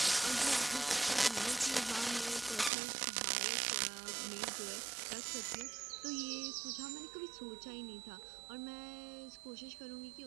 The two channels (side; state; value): left; drops out; at 2.7 s